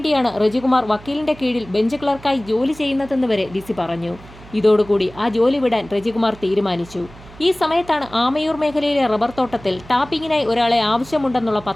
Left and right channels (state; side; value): noise; right; hum, 20 dB below the sound